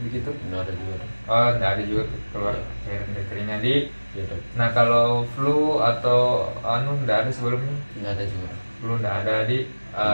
Tidak ada juga dok. Oh, nggak ada juga keluar cairan dari telinga di. Iya dok. Nah, kalau flu atau nggak ada sebelumnya? Tidak ada juga dok. Flu nggak ada di.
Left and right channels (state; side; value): inverted; both; correlation -1.00